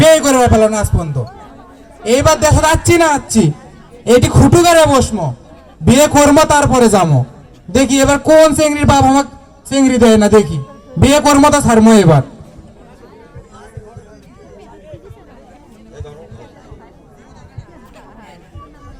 করে ফেলো না আজ পর্যন্ত। এইবার দেশে যাচ্ছি না যাচ্ছি এটি খুটু করে বসমো, বিয়ে করবো তারপরে যাবো। দেখি এবার কোন চেংড়ির বাপ আমাকে চেংড়ি দেয় না, দেখি বিয়ে করবো তা ছাড়বো এবার।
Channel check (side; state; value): both; identical; correlation 1.00